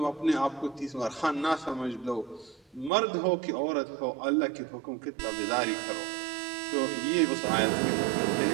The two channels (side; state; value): left; drops out; at 2.9 s